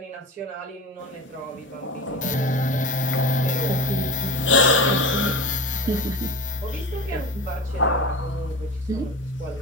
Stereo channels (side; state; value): both; normal; correlation 0.28